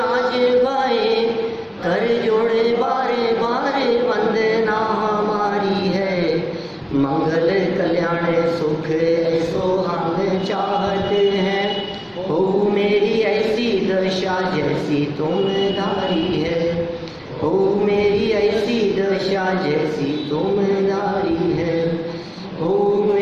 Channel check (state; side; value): identical; both; correlation 1.00